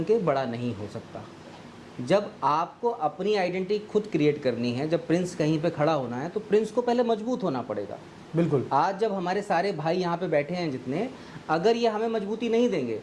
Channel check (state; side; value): identical; both; correlation 1.00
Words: के बड़ा नहीं हो सकता। जब आपको अपनी आइडेंटिटी खुद क्रिएट करनी है, जब प्रिंस कहीं पे खड़ा होना है, तो प्रिंस को पहले मजबूत होना पड़ेगा। बिल्कुल। आज जब हमारे सारे भाई यहाँ पे बैठे हैं जितने, अगर ये हमें मजबूती नहीं देंगे